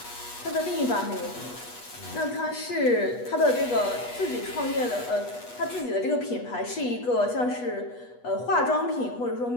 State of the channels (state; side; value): late; right; 8.2 ms